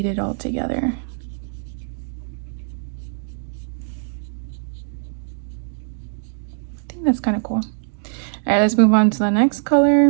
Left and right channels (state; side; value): silent; left; digital silence